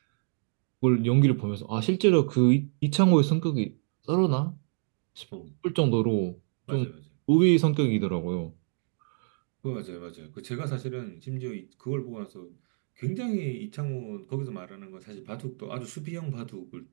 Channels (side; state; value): left; silent; 57 dB below the other